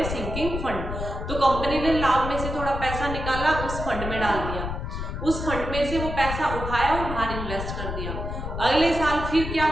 सिंकिंग फंड। तो कंपनी ने लाभ में से थोड़ा पैसा निकाला, उस फंड में डाल दिया, उस फंड में से वो पैसा उठाया और बाहर इन्वेस्ट कर दिया। अगले साल फिर क्या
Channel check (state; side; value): noise; left; rumble, 5 dB below the sound